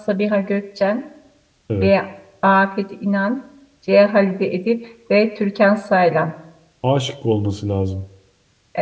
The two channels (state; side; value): identical; both; correlation 1.00